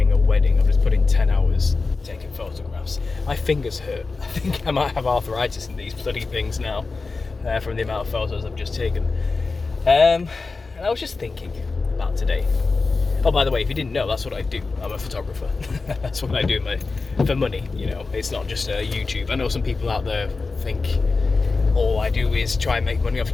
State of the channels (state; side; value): quieter; right; 4.0 dB